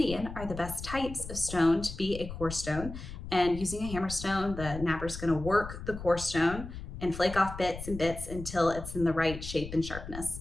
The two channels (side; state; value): left; noise; rumble, 10 dB below the sound